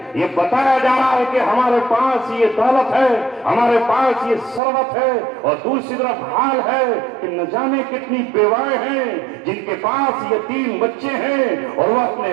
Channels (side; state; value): left; drops out; at 4.6 s